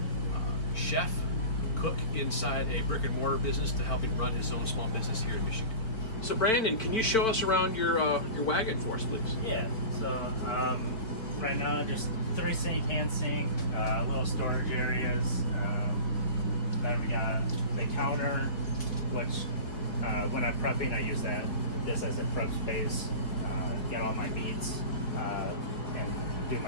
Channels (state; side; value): late; right; 4.2 ms